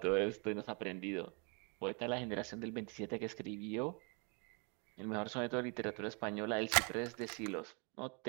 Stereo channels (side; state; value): left; quieter; 34.8 dB